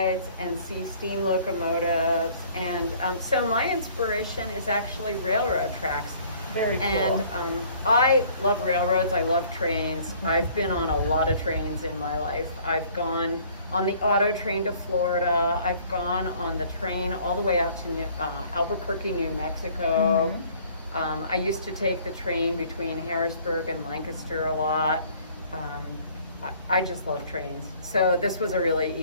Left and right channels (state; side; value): inverted; both; correlation -0.56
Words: and see steam locomotives. And so my inspiration is actually railroad tracks. Very cool. And I love railroads. I love trains. I've been on a lot of trains in my life. I've gone on the auto train to Florida. I've gone on the train all the way out to Albuquerque, New Mexico. I used to take the train between Harrisburg and Lancaster a lot. I just love trains. So this was a really